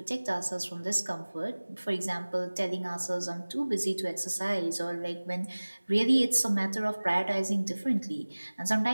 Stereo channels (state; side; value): inverted; both; correlation -1.00